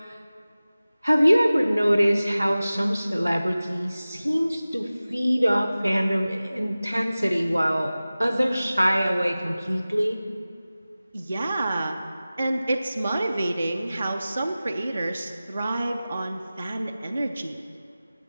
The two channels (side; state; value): both; inverted; correlation -0.97